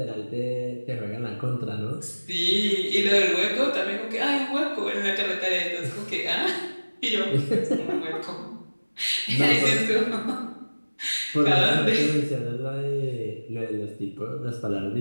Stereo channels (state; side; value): inverted; both; correlation -1.00